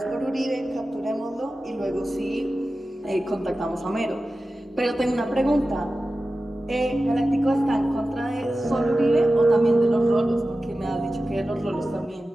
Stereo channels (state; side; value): normal; both; correlation 0.94